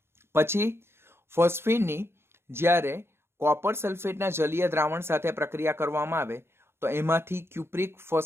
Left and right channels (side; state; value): left; late; 0.12 ms